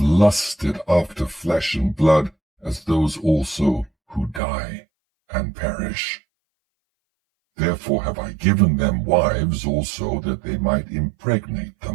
after flesh and blood, as those also who die and perish. Therefore have I given them wives also, that they might impregnate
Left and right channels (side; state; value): left; drops out; at 4.4 s